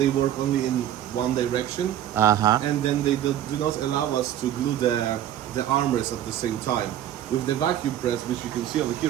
work only in one direction. And then they do not allow us to glue the armrest at the same time. With the vacuum press, which you can see over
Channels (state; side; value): quieter; left; 11.5 dB